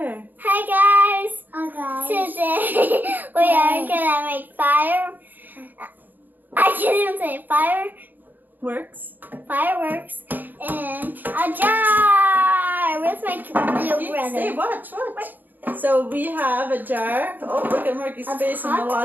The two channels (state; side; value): late; left; 0.087 ms